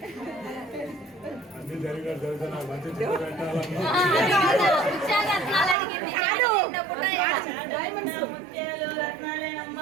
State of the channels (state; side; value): drops out; left; at 5.8 s